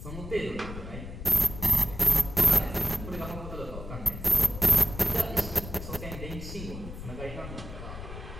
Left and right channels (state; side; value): noise; left; rumble, 10 dB below the sound